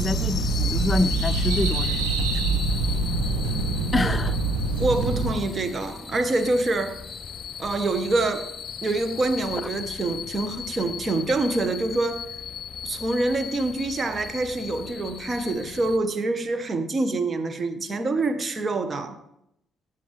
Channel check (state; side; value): normal; both; correlation 0.71